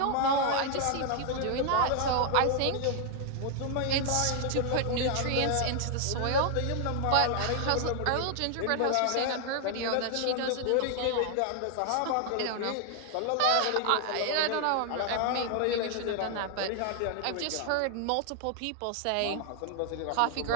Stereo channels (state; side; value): different; both; correlation 0.00